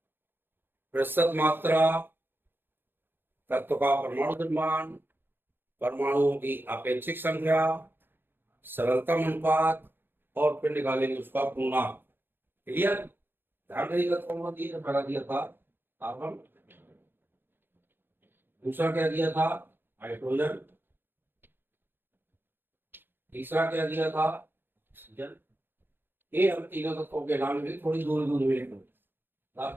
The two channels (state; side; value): late; left; 0.10 ms